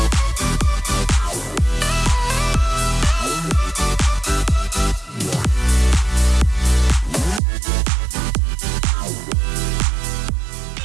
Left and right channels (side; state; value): left; drops out; at 7.4 s